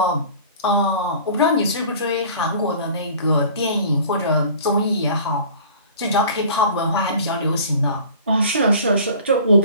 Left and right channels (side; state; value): both; inverted; correlation -0.45